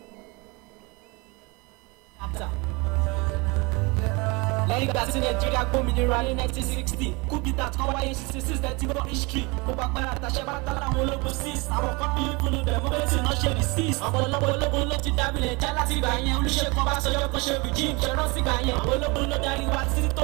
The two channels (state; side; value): quieter; left; 27.2 dB